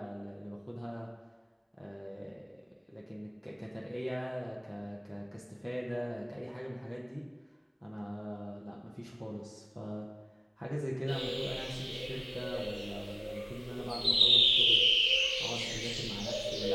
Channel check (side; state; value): both; identical; correlation 1.00